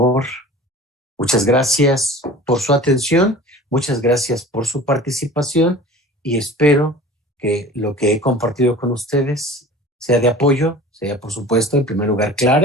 Muchas gracias por su atención, muchas gracias por su participación y espero que lo que he compartido con ustedes sea de apoyo, sea por supuesto en primer lugar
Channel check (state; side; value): normal; both; correlation 0.41